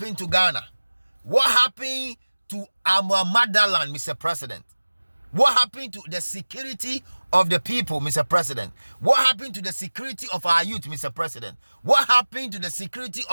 to Ghana? What happened to our motherland, Mr. President? What happened to the security of the people, Mr. President? What happened to the security of our youth, Mr. President? What happened to the security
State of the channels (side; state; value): both; inverted; correlation -1.00